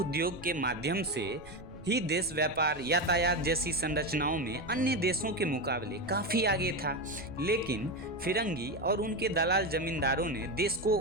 के माध्यम से ही देश व्यापार, यातायात जैसी संरचनाओं में अन्य देशों के मुकाबले काफ़ी आगे था। लेकिन फिरंगी और उनके दलाल जमींदारों ने देश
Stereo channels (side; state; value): right; noise; rumble, 19 dB below the sound